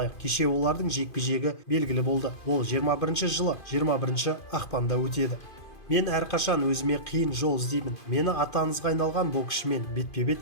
кеше олардың жекпе-жегі белгілі болды. Ол 21 жылы 21 ақпанда өтеді. Мен әрқашан өзіме қиын жол іздеймін. Мені ата-аңызға айналған боксшымен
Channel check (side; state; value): right; late; 2.5 ms